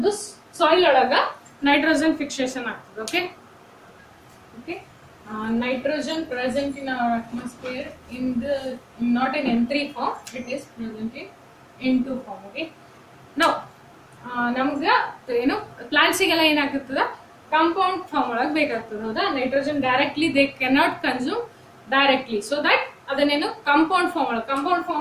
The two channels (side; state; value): both; identical; correlation 1.00